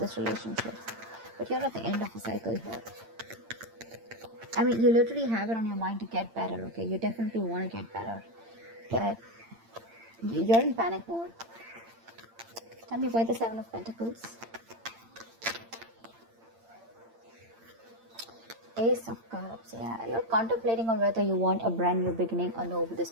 relationship. But you're at the end of a cycle here. I mean, you literally have it on your mind to get better, okay? You definitely want to get better. But you're in panic mode. Tell me why the Seven of Pentacles? Ace of Cups, yeah. You're contemplating on whether you want a brand new beginning or no with this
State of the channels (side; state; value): left; late; 8.8 ms